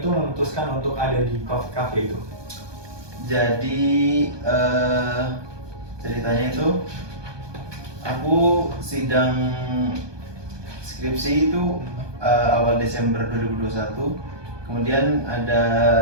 memutuskan untuk ada di kafe itu? Jadi ceritanya itu aku sidang skripsi itu awal Desember 2021. Kemudian ada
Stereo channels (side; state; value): left; late; 1.2 ms